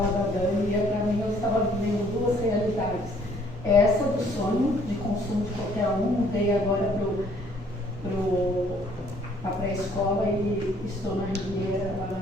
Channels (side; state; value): both; normal; correlation 0.61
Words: da Dani e para mim eu estava vivendo 2 realidades. Essa do sonho de consumo de qualquer um, mudei agora para a pré-escola e estou na Ribeira, lá